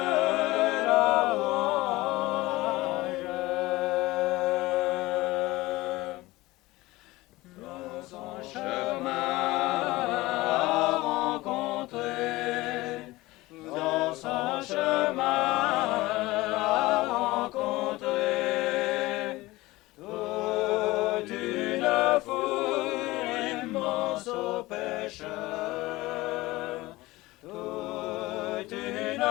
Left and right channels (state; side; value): quieter; right; 19.7 dB